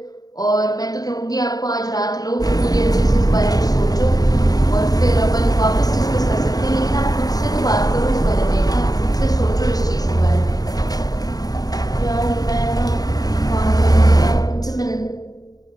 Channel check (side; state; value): right; late; 0.18 ms